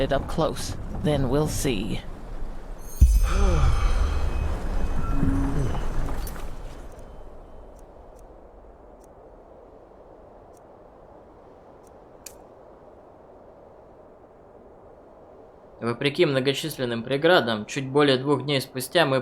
up close. Then we'll see. Вопреки многочисленным преградам, чуть более 2 дней спустя мы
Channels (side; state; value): both; identical; correlation 1.00